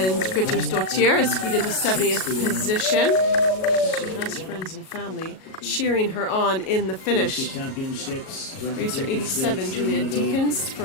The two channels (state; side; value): late; right; 37 ms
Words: Grettersdottir is skied into 70th position. She has friends and family cheering her on in the finish. Racer 87, Julia Deakins